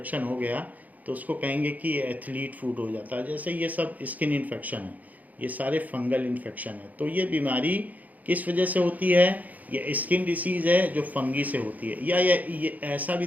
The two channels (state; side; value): late; left; 0.078 ms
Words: हो गया तो उसको कहेंगे कि ये एथलीट फूड हो जाता है। जैसे ये सब स्किन इन्फेक्शन है, ये सारे फंगल इन्फेक्शन है। तो ये बीमारी किस वजह से होती है? ये स्किन डिसीज़ है जो फंगी से होती है। या ये ऐसा भी